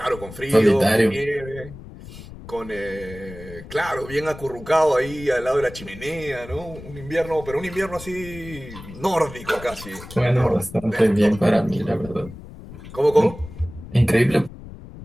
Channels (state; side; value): noise; left; rumble, 15 dB below the sound